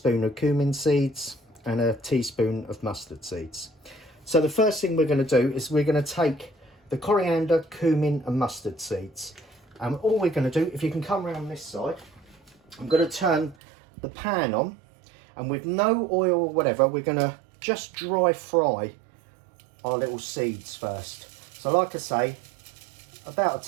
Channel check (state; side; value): drops out; left; at 13.6 s